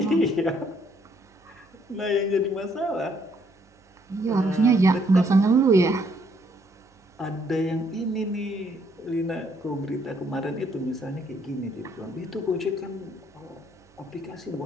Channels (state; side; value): normal; both; correlation 0.68